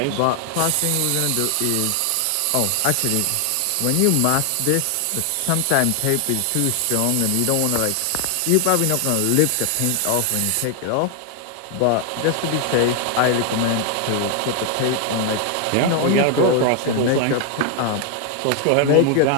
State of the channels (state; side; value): different; both; correlation 0.00